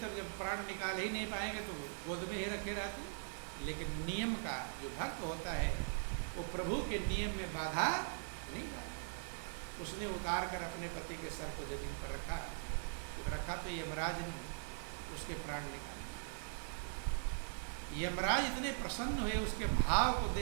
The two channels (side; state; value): left; silent; 50 dB below the other